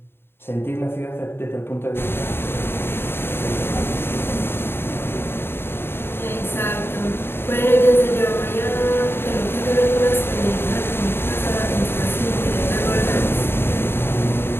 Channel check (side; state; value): right; late; 0.11 ms